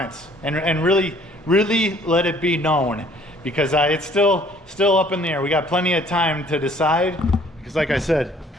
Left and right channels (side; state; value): both; normal; correlation 0.57